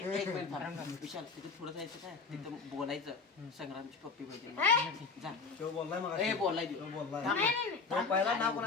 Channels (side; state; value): right; quieter; 4.7 dB